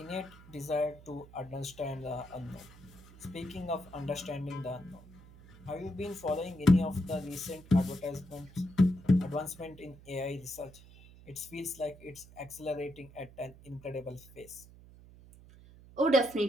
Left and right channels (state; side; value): noise; right; hum, 21 dB below the sound